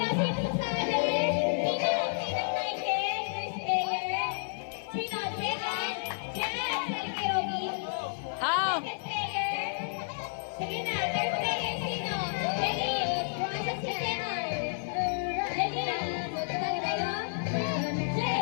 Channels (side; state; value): right; silent; 57 dB below the other